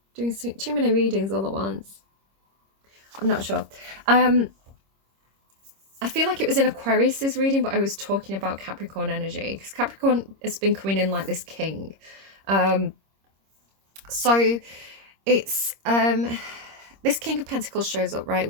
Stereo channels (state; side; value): late; left; 26 ms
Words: doing too many readings all at once. I'm not sure. I feel like it was in Aquarius's reading, but I was talking about Capricorn energy, because Capricorn has been coming in like this king. So it's this King of Pentacles shows up, right,